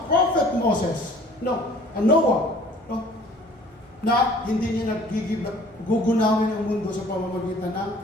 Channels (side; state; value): both; normal; correlation 0.52